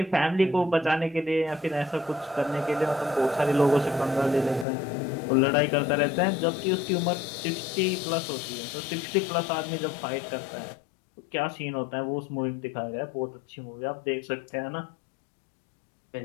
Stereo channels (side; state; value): right; drops out; at 4.7 s